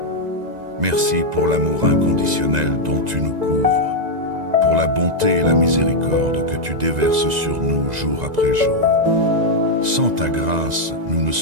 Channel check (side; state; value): left; late; 2.0 ms